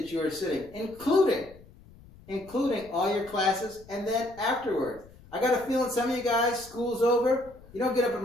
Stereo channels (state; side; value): noise; left; rumble, 23 dB below the sound